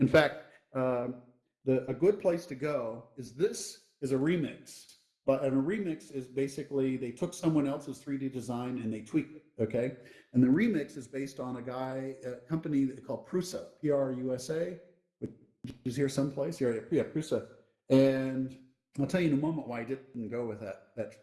in fact, a good place to go is a remix. But a remix is basically they took someone else's 3D design and they tweaked it, okay? And the remix is based on a company called Prusa, Prusa, which is here someplace. Yeah, Prusa. And I'll tell you in a moment why I didn't go with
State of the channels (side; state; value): both; identical; correlation 1.00